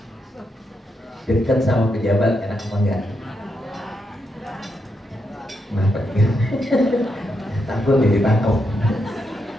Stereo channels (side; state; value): both; normal; correlation 0.82